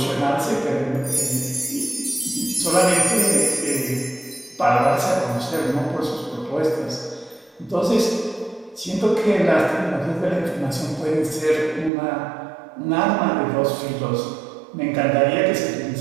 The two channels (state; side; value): drops out; left; at 11.9 s